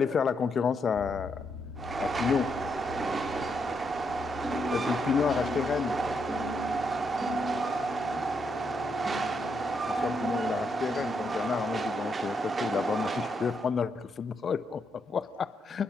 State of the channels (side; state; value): both; normal; correlation 0.79